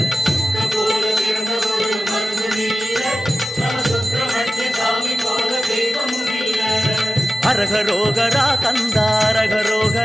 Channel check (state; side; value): normal; both; correlation 0.94